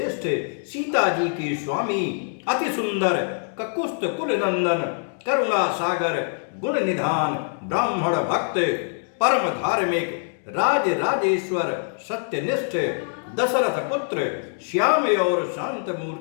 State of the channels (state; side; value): silent; right; 60 dB below the other